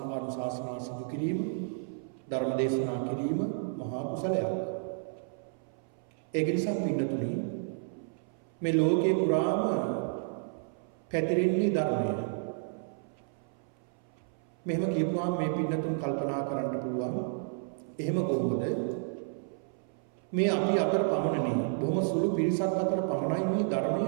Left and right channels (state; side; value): silent; left; 57 dB below the other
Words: සිදු කිරීම, ධර්ම දේශනා කිරීම මහා කුසලයක්. ඒක නිසා පින්නතුනි, මේ ලෝකේ පුරාම පැතිරෙන්නේ ධර්මය. මෙහෙම කියපුවාම මේ පින්නතුන් කල්පනා කරන්න පුළුවන්, එහෙම කොහොමද මේ අපි අතර පමණනේ, බොහොම සුළු පිරිසක් අතර පමණයි මේ ධර්මය